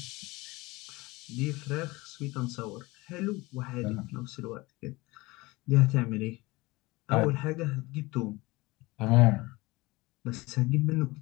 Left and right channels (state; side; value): quieter; right; 22.0 dB